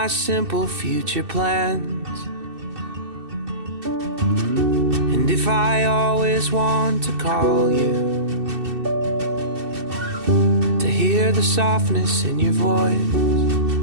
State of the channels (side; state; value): left; late; 2.7 ms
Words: simple future plans, and if I always want to call you, to hear the softness in your voice,